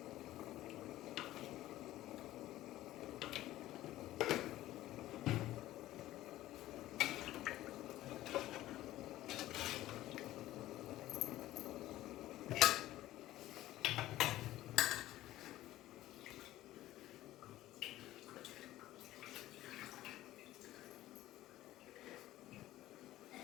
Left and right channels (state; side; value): quieter; right; 15.2 dB